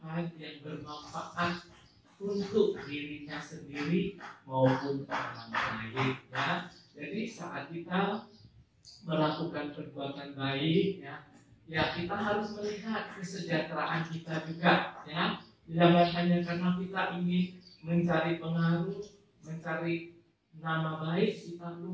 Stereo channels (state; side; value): identical; both; correlation 1.00